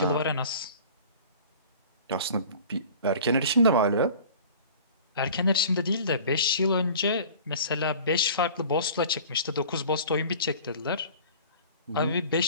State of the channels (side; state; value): both; inverted; correlation -0.44